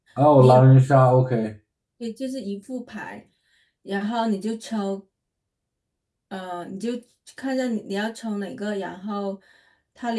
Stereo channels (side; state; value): both; identical; correlation 1.00